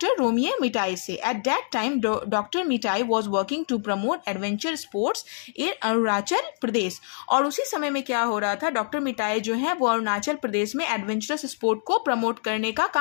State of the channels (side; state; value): right; silent; digital silence